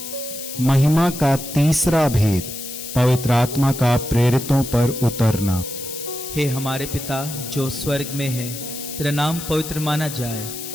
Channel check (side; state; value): left; noise; hiss, 9 dB below the sound